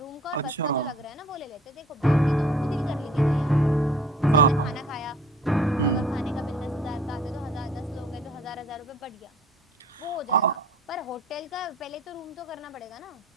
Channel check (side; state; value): both; normal; correlation 0.52